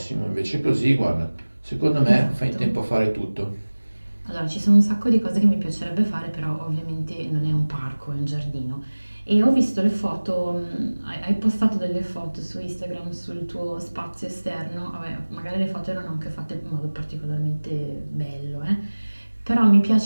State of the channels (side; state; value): both; inverted; correlation -1.00